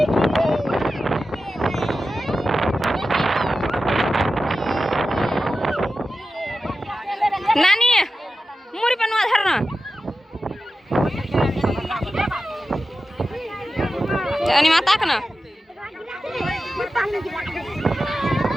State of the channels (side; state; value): both; normal; correlation 0.93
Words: नानी मुरी पनुआ धरना जानी माता का ना